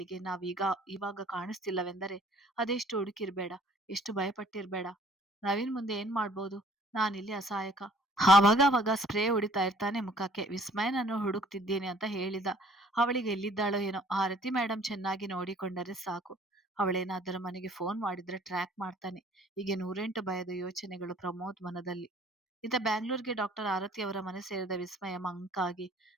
ಇವಾಗ ಕಾಣಿಸ್ತಿಲ್ಲವೆಂದರೆ ಅದೆಷ್ಟು ಹುಡುಕಿರ್ಬೇಡ, ಎಷ್ಟು ಭಯಪಟ್ಟಿರ್ಬೇಡ. ನವೀನ್ ಮುಂದೆ ಏನ್ ಮಾಡ್ಬೋದು, ನಾನಿಲ್ಲಿ ಅಸಹಾಯಕ. ಆವಾಗ ಸ್ಪ್ರೇ ಹೊಡಿತಾ ಇರ್ತಾನೆ ಮುಖಕ್ಕೆ. ವಿಸ್ಮಯನನ್ನು ಹುಡುಕ್ತಿದ್ದೀನಿ ಅಂತ ಹೇಳಿದ. ಅವಳಿಗೆ ಎಲ್ಲಿದ್ದಾಳೋ ಏನೋ, ಆರತಿ ಮೇಡಮ್ ಚೆನ್ನಾಗಿ ನೋಡಿಕೊಂಡರೆ ಸಾಕು. ಅವಳೇನಾದರೂ ಮನೆಗೆ ಫೋನ್ ಮಾಡಿದ್ರೆ ಟ್ರ್ಯಾಕ್ ಮಾಡ್ತಾನೆ. ಹೀಗೆ 108 ಭಯದ ಯೋಚನೆಗಳು ಪ್ರಮೋದ್ ಮನದಲ್ಲಿ. ಇತ್ತ ಬ್ಯಾಂಗ್ಳೂರ್ಗೆ ಡಾಕ್ಟರ್ ಆರತಿ ಅವರ ಮನೆ ಸೇರಿದ ವಿಸ್ಮಯ ಮಂಕಾಗಿ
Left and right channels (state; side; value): normal; both; correlation 0.55